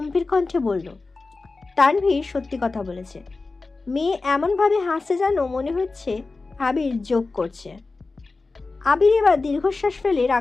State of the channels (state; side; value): quieter; right; 3.7 dB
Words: কণ্ঠে বলল, তানভীর সত্যি কথা বলেছে। মেয়ে এমনভাবে হাসছে যেন মনে হচ্ছে আবির যোগ করছে। আবির এবার দীর্ঘশ্বাস ফেলে